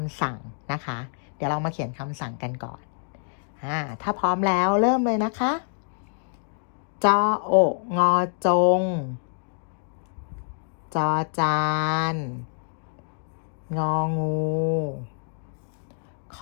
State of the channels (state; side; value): silent; right; digital silence